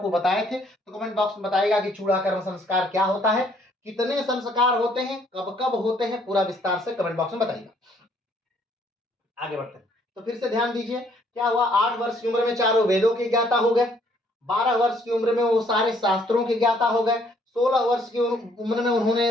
बताए थे। तो कमेंट बॉक्स में बताइएगा कि चूड़ा कर्म संस्कार क्या होता है, कितने संस्कार होते हैं, कब कब होते हैं, पूरा विस्तार से कमेंट बॉक्स में बताइएगा। आगे बढ़ते हैं। तो फिर से ध्यान दीजिए, क्या हुआ, 8 वर्ष की उम्र में चारों वेदों के ज्ञाता हो गए। 12 वर्ष की उम्र में वो सारे शास्त्रों के ज्ञाता हो गए। 16 वर्ष की उम्र में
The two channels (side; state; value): both; normal; correlation 0.65